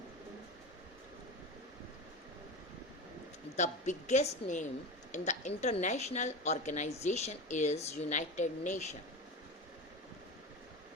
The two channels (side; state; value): both; normal; correlation 0.25